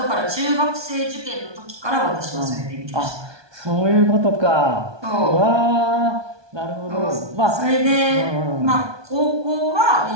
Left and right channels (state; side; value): late; left; 1.2 ms